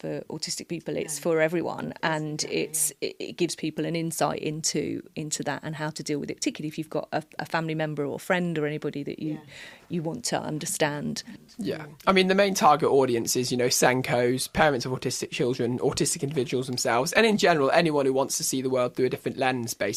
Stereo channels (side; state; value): both; identical; correlation 1.00